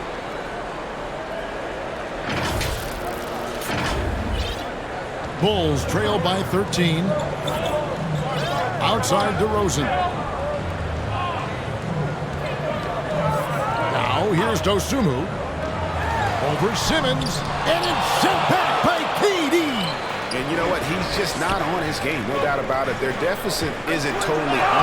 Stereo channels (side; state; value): both; identical; correlation 1.00